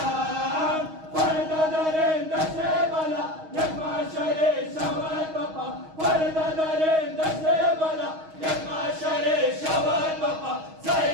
पर्दा दरिंद से बला यकमा शरे शवत बपा पर्दा दरिंद से बला यकमा शरे शवत बपा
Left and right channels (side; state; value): left; late; 6.3 ms